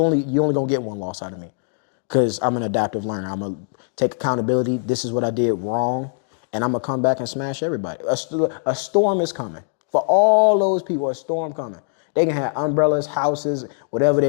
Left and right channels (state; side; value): silent; right; digital silence